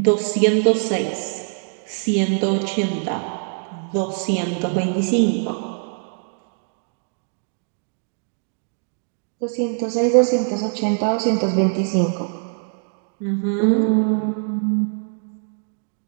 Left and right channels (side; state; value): left; silent; 64 dB below the other